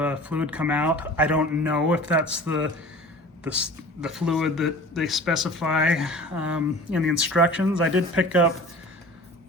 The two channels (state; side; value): normal; both; correlation 0.42